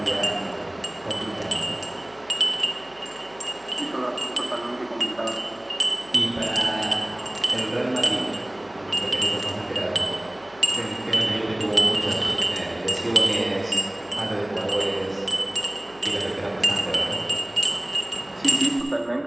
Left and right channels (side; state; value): right; noise; hum, 29 dB below the sound